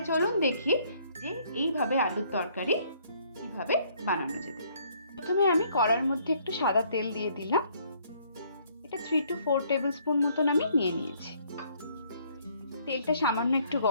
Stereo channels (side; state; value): both; inverted; correlation -0.64